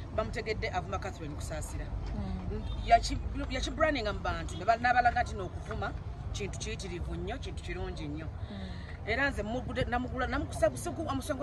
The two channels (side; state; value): both; identical; correlation 1.00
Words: bamutegedde avuma Catherine kusaasira yakibrandinga mu bantu n'abalaga nti n'okuvuma kintu kiyitirivu nnyo kintu kirungi nnyo era nze omusango